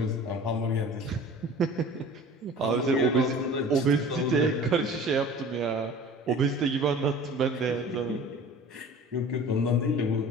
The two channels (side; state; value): both; normal; correlation 0.43